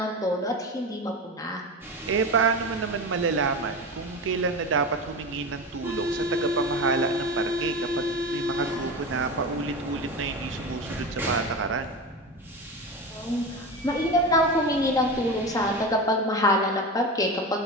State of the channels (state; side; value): normal; both; correlation 0.25